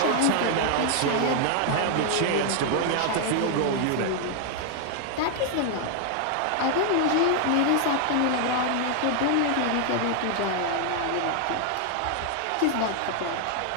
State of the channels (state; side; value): different; both; correlation 0.00